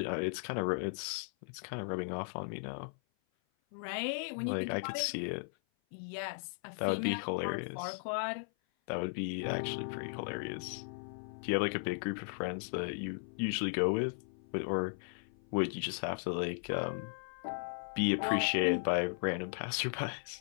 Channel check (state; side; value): silent; right; 53 dB below the other